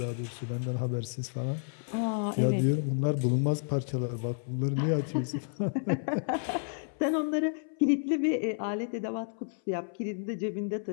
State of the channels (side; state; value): right; silent; 57 dB below the other